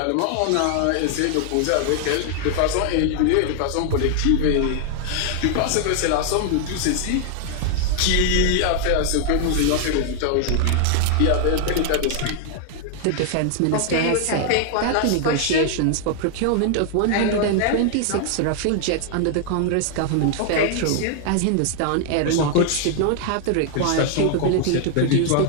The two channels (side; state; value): both; different; correlation 0.00